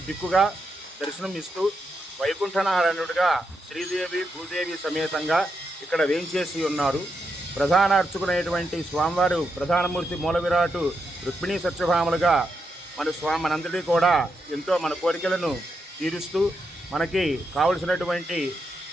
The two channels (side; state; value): both; normal; correlation 0.83